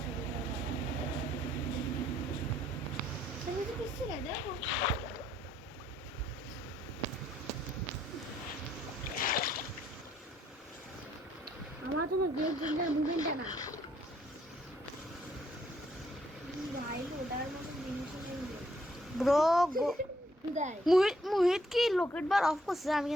আমার জন্য গেম চেঞ্জার মুভমেন্টটা না ভাই ওটার মতো জিনিস নেই ব্রো গো। দেয় মুহিত কি লোকেট বার অফ করছে? আমি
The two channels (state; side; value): normal; both; correlation 0.69